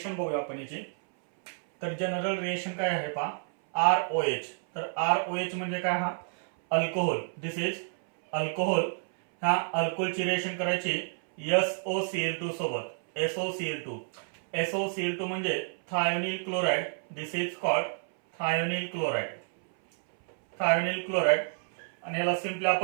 बघूया आपण याची. तर जनरल रिएक्शन काय आहे पहा, ROH. तर ROH म्हणजे काय, हा अल्कोहोल. This is alcohol. ह्या अल्कोहोलची रिएक्शन करायची SOCl2 सोबत. SOCl2. SOCl2 म्हणजे thionyl chloride. This is called thionyl chloride. Thionyl chloride. आणि याला सिंपली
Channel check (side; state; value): left; silent; 58 dB below the other